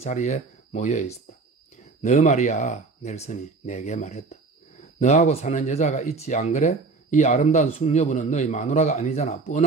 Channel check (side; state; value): left; quieter; 4.0 dB